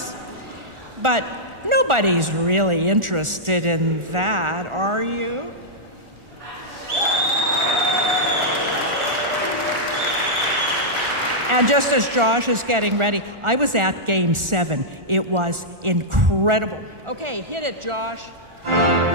but nobody's really interested in that, are you? And just as Josh is getting ready, I was at Game 7. It was incredible. Okay, hit it, Josh.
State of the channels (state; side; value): late; left; 1.4 ms